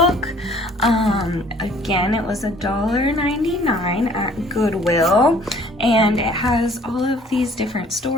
Again, it was $1.99 at Goodwill, and it has all of these different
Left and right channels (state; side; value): normal; both; correlation 0.56